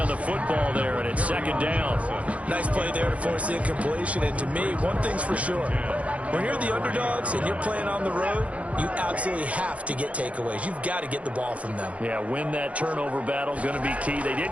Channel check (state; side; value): late; left; 0.064 ms